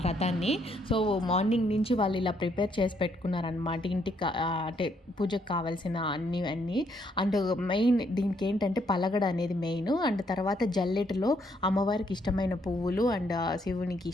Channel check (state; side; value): normal; both; correlation 0.72